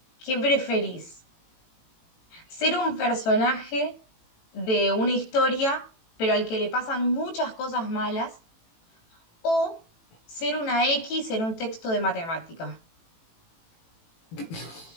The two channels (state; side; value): late; right; 18 ms